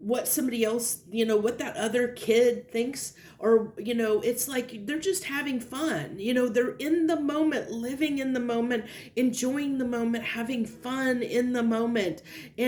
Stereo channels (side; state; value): both; identical; correlation 1.00